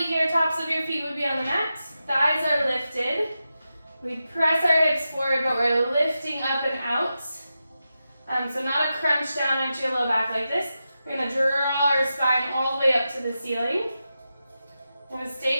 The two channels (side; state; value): both; inverted; correlation -0.90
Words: tops of your feet would be on the mat. Thighs are lifted. We press our hips forward, but we're lifting up and out. So not a crunch down into your low back like this. We're going to draw our spine all the way up to the ceiling. We're going to